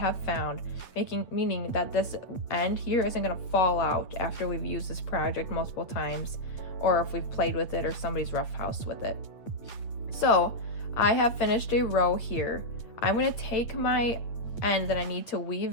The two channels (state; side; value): late; right; 8.5 ms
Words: found, meaning that this end here isn't going to fall out after we've used this project multiple times, or if we've played with it or somebody's roughhoused with it. So I have finished a row here. I'm going to take my end that I need to